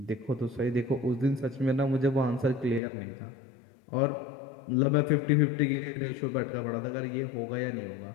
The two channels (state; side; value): drops out; right; at 2.8 s